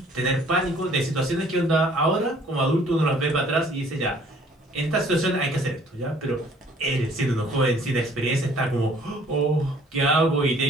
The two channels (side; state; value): both; normal; correlation 0.57